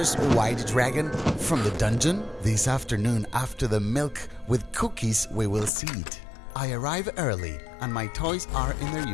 white dragon from the dungeon? This afternoon, after the milk with cookies, we will see it. I arrive early, and my toys are in their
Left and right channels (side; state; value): right; drops out; at 5.7 s